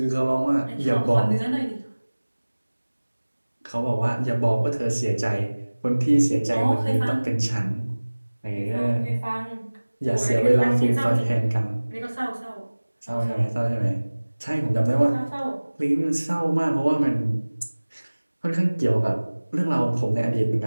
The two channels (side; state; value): both; inverted; correlation -1.00